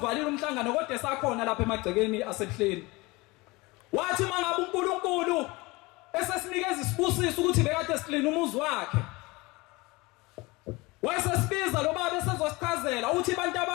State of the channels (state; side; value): quieter; right; 23.3 dB